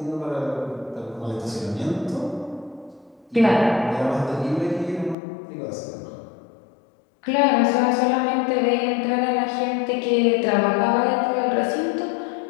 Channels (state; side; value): drops out; right; at 5.2 s